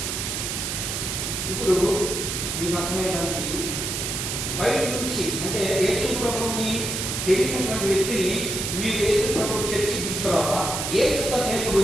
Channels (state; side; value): noise; right; hiss, 3 dB below the sound